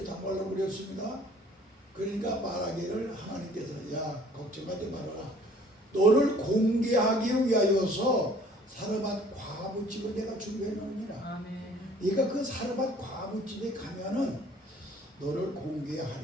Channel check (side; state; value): both; normal; correlation 0.54